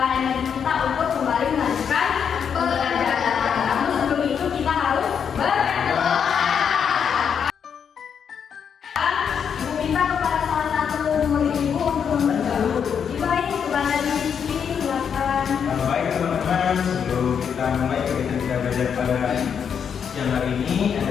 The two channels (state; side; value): quieter; right; 7.4 dB